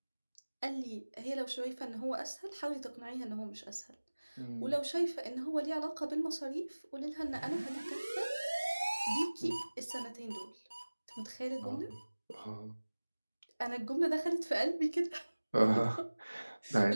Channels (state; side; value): inverted; both; correlation -1.00